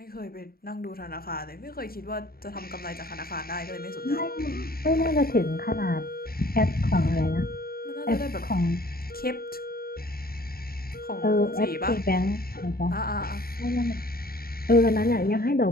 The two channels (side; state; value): right; late; 0.44 ms